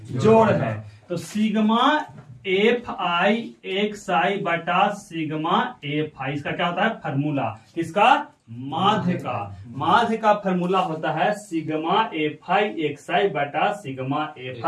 जोड़ है। तो सिग्मा एफ आई एक साई बटा सिग्मा एफ आई, इसका क्या होता है? फॉर्मूला। किसका? माध्य का। माध्य का फॉर्मूला होता है सिग्मा एफ आई एक साई बटा सिग्मा एफ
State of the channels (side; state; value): both; identical; correlation 1.00